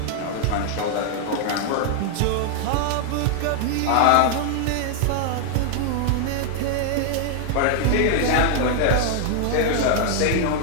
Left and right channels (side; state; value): both; different; correlation 0.00